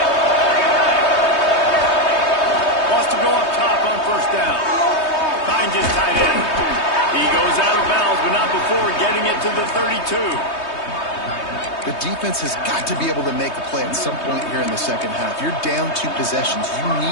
Wants to go up top on first down. Finds his tight end. He goes out of bounds, but not before getting it to the 32. The defense has got to be able to make a play at some point here in the second half. You're down 2 possessions. You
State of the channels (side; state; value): right; late; 3.2 ms